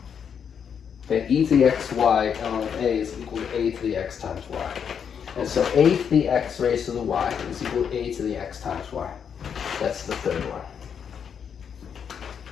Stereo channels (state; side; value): quieter; right; 7.5 dB